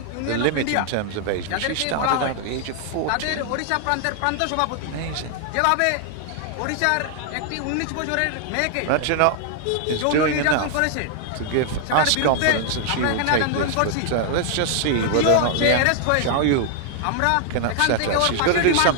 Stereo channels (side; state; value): both; different; correlation 0.00